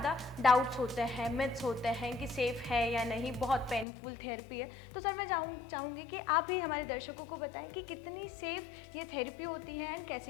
डाउट्स होते हैं, मिथ्स होते हैं कि सेफ़ है या नहीं, बहुत पेनफुल थेरेपी है। तो सर मैं चाहूँगी कि आप ही हमारे दर्शकों को बताएं कि कितनी सेफ़ ये थेरेपी होती है एंड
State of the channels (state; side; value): drops out; right; at 3.9 s